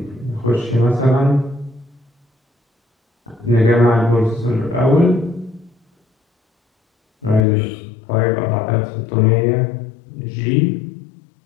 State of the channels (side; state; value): right; drops out; at 7.5 s